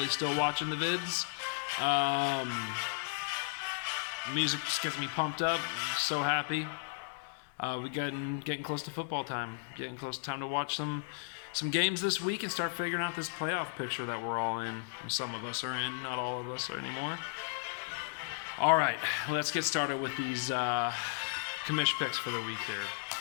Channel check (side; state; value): right; silent; digital silence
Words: still watching the vids. Music just gets me pumped up. I'm so happy. We're getting close to football time. Getting close to time to watch some games this week and start figuring out this playoff picture that we're all in. Some of us are in, not all of us are anymore. All right, let's get started with these commish picks for the week here.